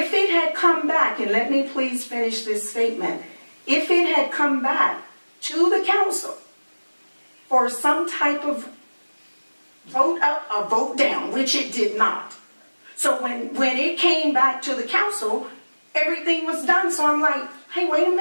it had come back, and let me please finish this statement, if it had come back to the council for some type of vote up or vote down, which it did not. So when it came back to the council, everything was done. So I'm like, hey, wait a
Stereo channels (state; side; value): inverted; both; correlation -1.00